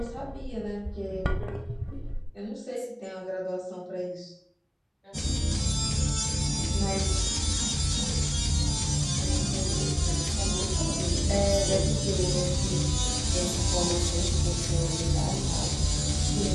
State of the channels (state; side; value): identical; both; correlation 1.00